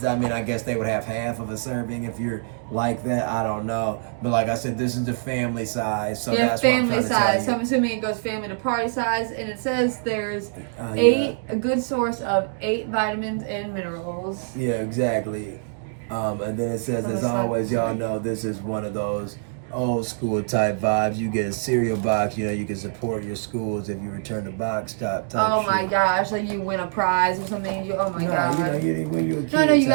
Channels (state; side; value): silent; left; digital silence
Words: I mean, I guess they would have half of a serving if you're like that. I don't know, but like I said, this is the family size. So that's family what I'm trying to tell you. So I'm assuming it goes family to party size, and it says there's a good source of 8 vitamins and minerals. Yeah, exactly. And then it says, as always, y'all know this is one of those old school type vibes. You get a cereal box, you can support your schools if you return the box type Oh my gosh, like you win a prize or something. Oh my No, god. when you're a kid. No, you